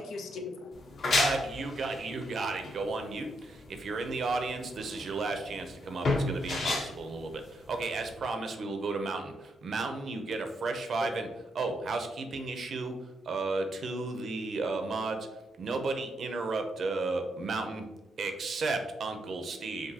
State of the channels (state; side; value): normal; both; correlation 0.79